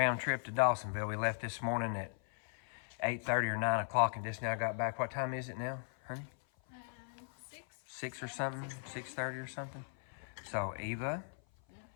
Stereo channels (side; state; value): right; silent; 52 dB below the other